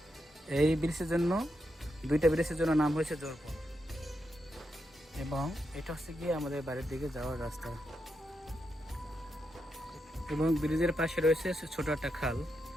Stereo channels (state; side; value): normal; both; correlation 0.84